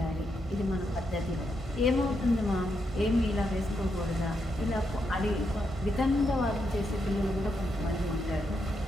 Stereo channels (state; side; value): normal; both; correlation 0.81